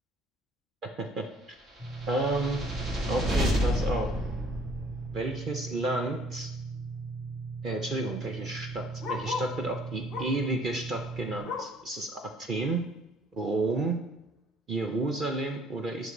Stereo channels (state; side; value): normal; both; correlation 0.59